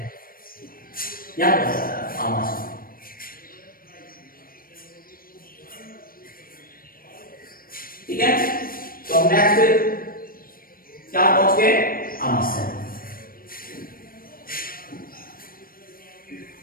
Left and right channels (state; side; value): late; right; 0.42 ms